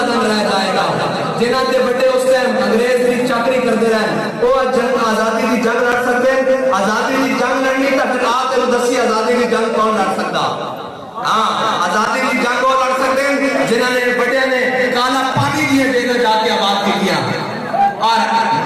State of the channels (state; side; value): identical; both; correlation 1.00